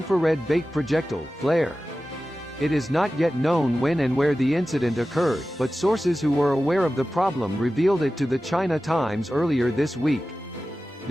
bait projectile, flare. It is not yet known when and where the incident occurred, but sources who were aware of the problem revealed it to the China Times earlier this week.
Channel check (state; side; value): normal; both; correlation 0.95